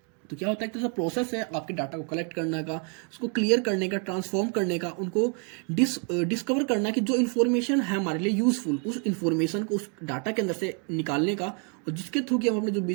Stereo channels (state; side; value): quieter; left; 38.6 dB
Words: तो क्या होता है, एक प्रोसेस है आपके डाटा को कलेक्ट करने का, उसको क्लियर करने का, ट्रांसफॉर्म करने का, उनको डिस्कवर करना कि जो इन्फॉर्मेशन है हमारे लिए यूजफुल, उस इन्फॉर्मेशन को उस डाटा के अंदर से निकालने का, और जिसके थ्रू कि हम अपने जो